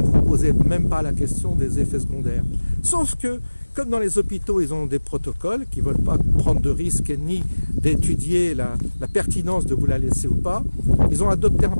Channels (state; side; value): inverted; both; correlation -1.00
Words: vous ne posez même pas la question des effets secondaires. Sauf que, comme dans les hôpitaux, ils ont des protocoles qui ne veulent pas prendre de risques ni d'étudier la pertinence de vous la laisser ou pas. Ils ont adopté un